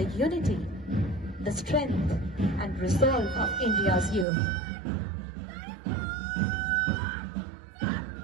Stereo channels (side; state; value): left; drops out; at 4.2 s